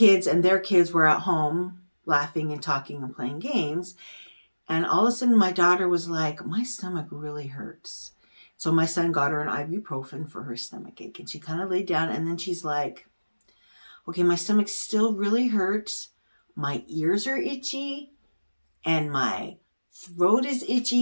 and their kids were at home laughing and talking and playing games. And all of a sudden my daughter was like, my stomach really hurts. So my son got her an ibuprofen for her stomach ache. And she kind of laid down, and then she's like, okay, my stomach still really hurts. My ears are itchy and my throat is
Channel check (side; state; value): both; inverted; correlation -1.00